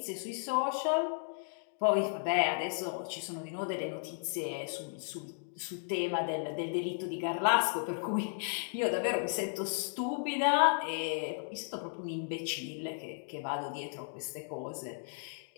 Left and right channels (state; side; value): silent; right; digital silence